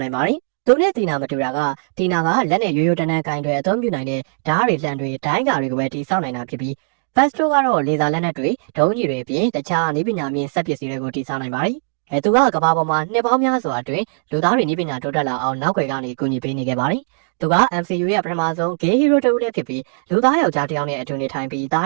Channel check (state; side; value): silent; left; digital silence